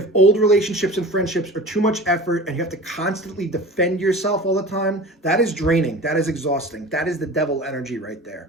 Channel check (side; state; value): both; normal; correlation 0.37